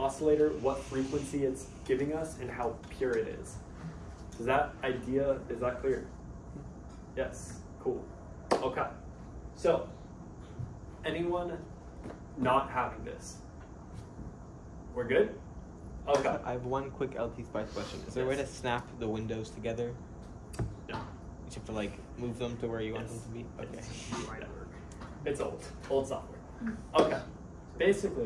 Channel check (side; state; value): both; identical; correlation 1.00